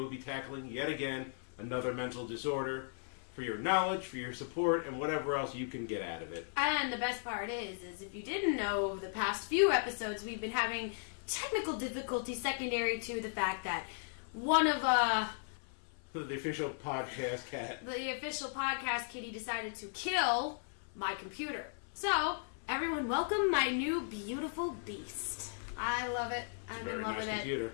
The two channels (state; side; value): silent; right; 53 dB below the other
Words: be tackling, yet again, another mental disorder for your knowledge, for your support, and whatever else you can get out of it. And the best part is if you didn't know, over the past few episodes, we've been having technical difficulties secondary to the fact that one of, the official podcast cat. the official podcast kitty decided to kill my computer. So, everyone welcome my new beautiful beast. I love it. I'm in love with it. Computer.